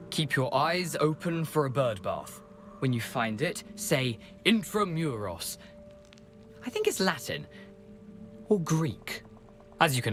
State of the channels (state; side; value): identical; both; correlation 1.00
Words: Keep your eyes open for a bird bath. When you find it, say Intramuros. I think it's Latin. Or Greek. As you can